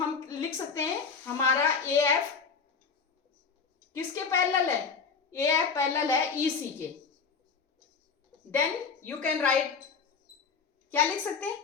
लिख सकते हैं हमारा ए एफ किसके पैरेलल है, ए एफ पैरेलल है ई सी के। देन यू कैन राइट, क्या लिख सकते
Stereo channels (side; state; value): right; quieter; 5.5 dB